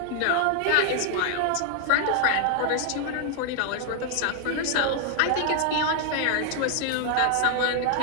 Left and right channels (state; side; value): different; both; correlation 0.00